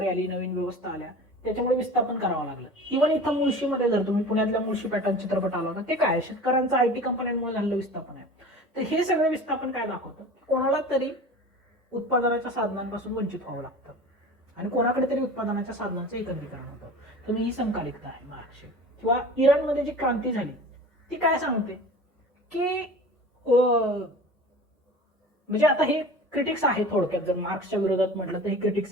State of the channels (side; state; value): both; normal; correlation 0.38